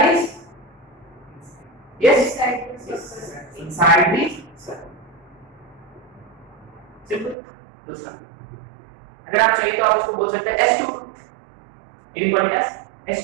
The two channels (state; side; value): drops out; left; at 7.4 s